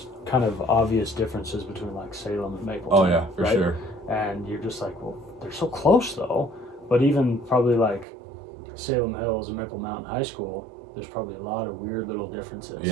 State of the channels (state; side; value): drops out; left; at 8.1 s